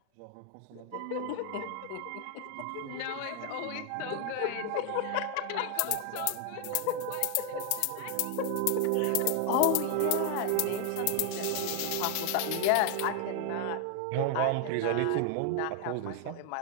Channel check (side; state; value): both; different; correlation 0.00